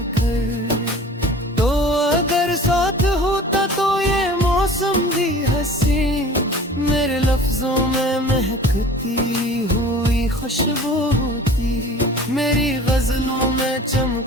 तो अगर साथ होता तो ये मौसम भी हंसी। मेरे लफ्जों में महकती हुई खुशबू होती। मेरी गजलों में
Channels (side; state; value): both; normal; correlation 0.43